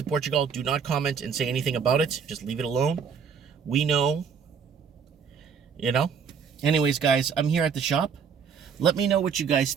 Portugal, do not comment and say anything about it. Just leave it alone. We know. Anyways, guys, I'm here at the shop. Let me know what you guys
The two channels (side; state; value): left; quieter; 6.5 dB